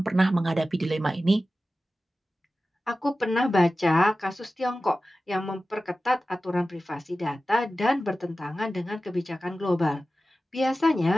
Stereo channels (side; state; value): both; normal; correlation 0.95